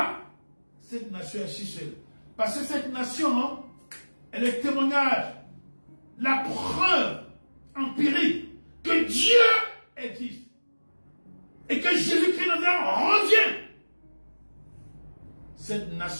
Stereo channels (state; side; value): inverted; both; correlation -1.00